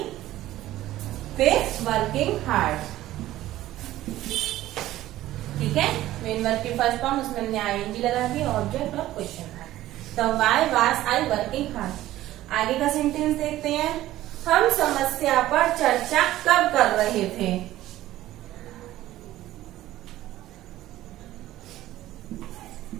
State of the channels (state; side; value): quieter; left; 14.9 dB